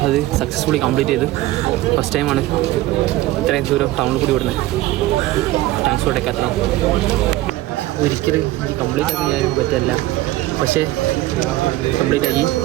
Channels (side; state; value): left; quieter; 16.9 dB